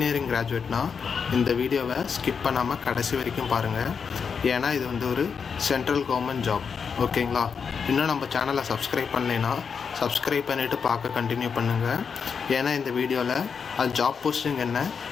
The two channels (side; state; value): right; quieter; 6.2 dB